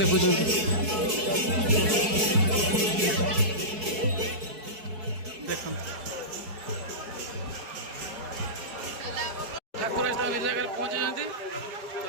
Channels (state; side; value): late; left; 4.6 ms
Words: ଦେଖନ୍ତୁ ଠାକୁର ଆସି ତାଙ୍କ ନିଜ ଜାଗାରେ ପହଞ୍ଚିଛନ୍ତି।